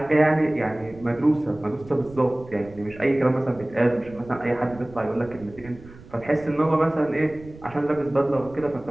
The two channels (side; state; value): right; noise; rumble, 20 dB below the sound